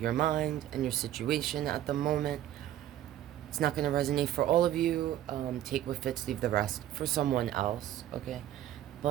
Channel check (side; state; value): left; quieter; 12.4 dB